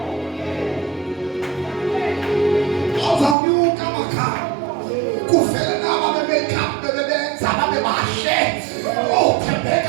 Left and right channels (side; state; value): left; drops out; at 3.4 s